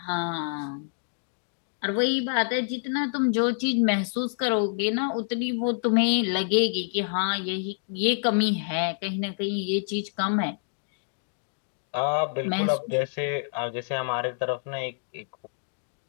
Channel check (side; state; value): right; silent; digital silence